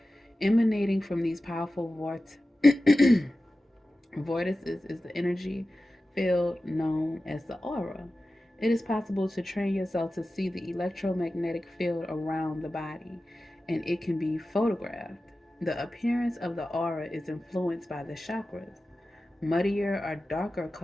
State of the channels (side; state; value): both; normal; correlation 0.94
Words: Emanating from these powerful vortices is the energy field known as the aura. It is possible to train yourself to see the electromagnetic field around the body, and it can be photographed. The appearance of the aura is influenced by the chakras. Muddier or darker